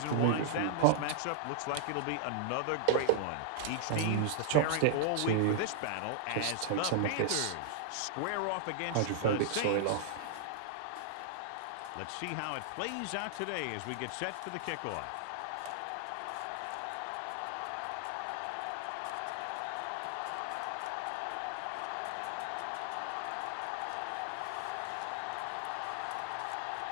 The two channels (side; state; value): both; different; correlation -0.01